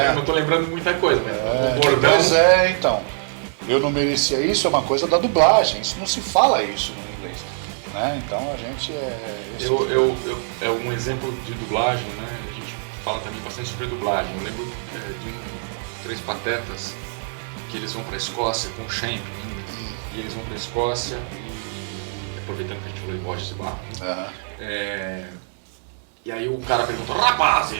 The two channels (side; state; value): left; silent; digital silence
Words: Eu não tô lembrando muita coisa, mas o bordão... Mas então. Eu não merecia isso, é uma coisa da dublagem. Isso não se fala isso no inglês. Né? Então a gente é um exemplo de dublagem, né? A gente fala também bastante sobre dublagem. Eu lembro de Três Patetas, que eles vão pra Escócia com o Champ ainda. E eles vão pra Escócia e aproveitando que a gente falou de Borges e Barro, né? E aí o cara perguntou: